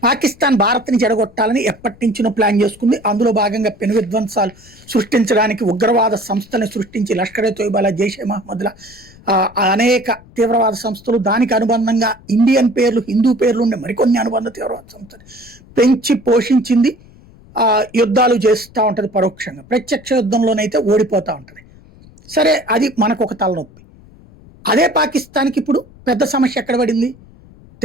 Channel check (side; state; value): left; noise; rumble, 24 dB below the sound